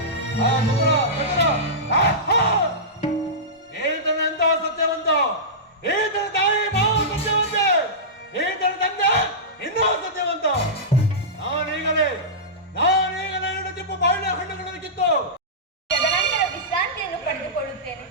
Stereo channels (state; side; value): normal; both; correlation -0.16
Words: ಈತನೆಂತ ಸತ್ಯವಂತ, ಈತನ ತಾಯಿ ಮಾವು ಸತ್ಯವಂತೆ, ಈತನ ತಂದೆ ಇನ್ನೂ ಸತ್ಯವಂತ. ನಾನೀಗಲೇ 2 ಚಿಪ್ಪು ಬಾಳೆ ಹಣ್ಣುಗಳನ್ನು ಕಿತ್ತು ತದನಂತರ ವಿಶ್ರಾಂತಿಯನ್ನು ಪಡೆದುಕೊಳ್ಳುತ್ತೇನೆ.